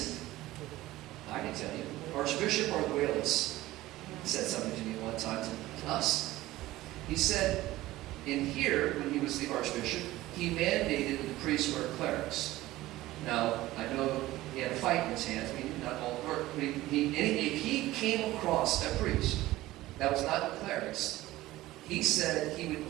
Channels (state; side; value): quieter; left; 16.9 dB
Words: it? I can tell you. Archbishop Arguelles said something to me one time to us. He said, in here, when he was the archbishop, he mandated the priests wear clerics. Now, I know he had a fight in his hands. Not all, but if he came across a priest that was not the clerics, he said he would